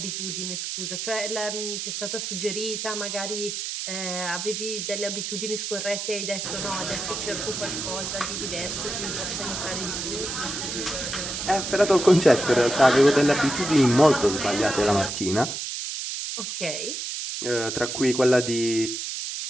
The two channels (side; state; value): right; noise; hiss, 4 dB below the sound